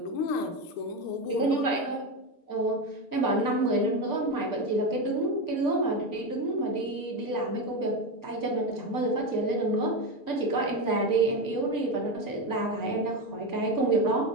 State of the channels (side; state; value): right; late; 6.8 ms